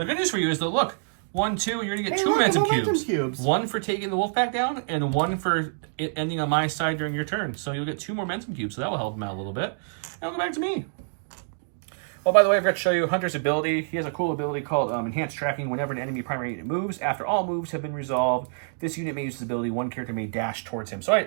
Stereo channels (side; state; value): left; silent; digital silence